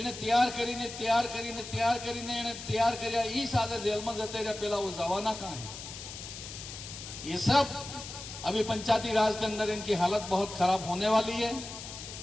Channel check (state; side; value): noise; left; hiss, 11 dB below the sound